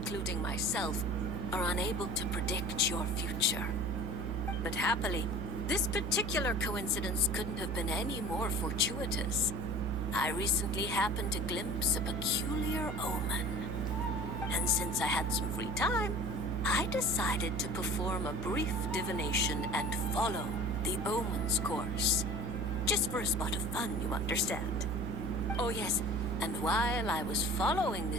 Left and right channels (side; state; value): right; noise; hum, 3 dB below the sound